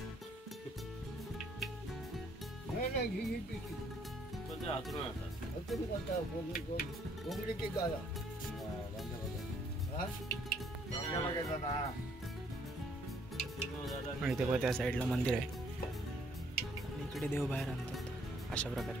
नाही घे पण ते हातरून आणतात. तुम्ही कोणता कोंबडी की गाला आणि ते बघा त्या साईडला मंदिर आहे आणि इकडे देव बाहेर आणतात अशा प्रकारे.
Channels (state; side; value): normal; both; correlation 0.66